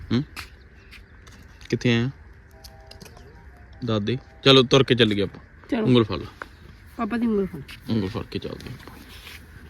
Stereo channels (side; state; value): both; identical; correlation 1.00